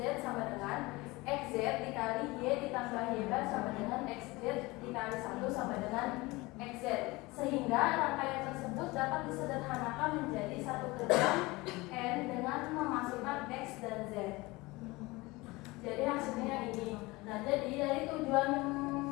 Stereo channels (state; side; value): quieter; right; 22.3 dB